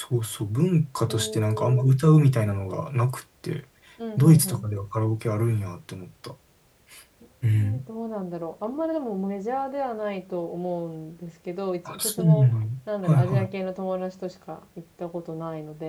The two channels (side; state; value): both; identical; correlation 1.00